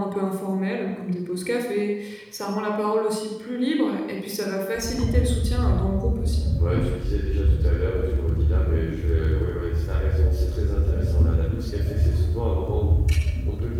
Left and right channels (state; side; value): identical; both; correlation 1.00